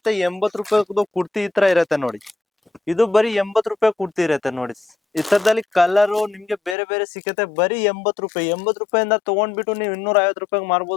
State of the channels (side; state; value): right; drops out; at 6.8 s